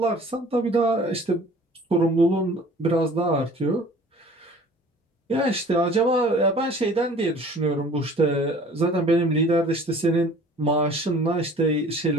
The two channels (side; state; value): both; normal; correlation 0.49